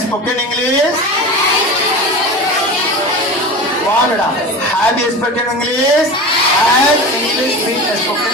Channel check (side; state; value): both; normal; correlation 0.31